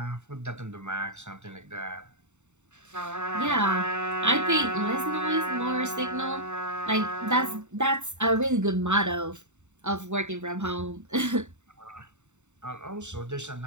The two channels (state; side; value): late; left; 0.84 ms